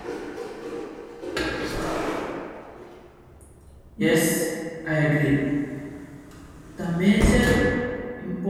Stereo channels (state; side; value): identical; both; correlation 1.00